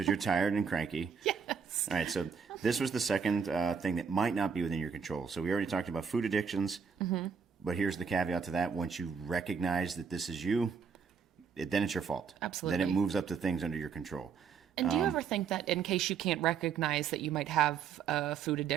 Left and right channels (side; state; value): left; quieter; 6.4 dB